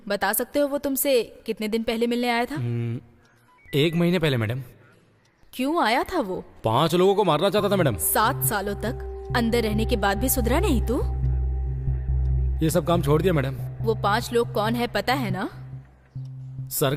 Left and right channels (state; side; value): identical; both; correlation 1.00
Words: बता सकते हो वो तुमसे कितने दिन पहले मिलने आया था? 1 महीने पहले मैडम। क्यों आया था वो? 5 लोगों को मारना चाहता था मैडम। 7 सालों तक अंदर रहने के बाद भी सुधरा नहीं तू? ये सब काम छोड़ दिया मैडम। वो 5 लोग कौन है पता है ना? सर